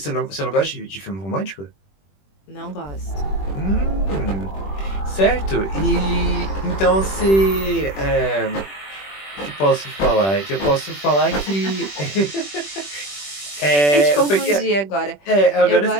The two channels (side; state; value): right; late; 21 ms